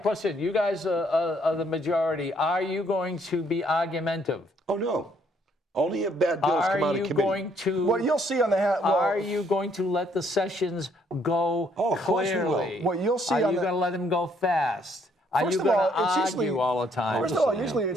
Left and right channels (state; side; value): normal; both; correlation 0.67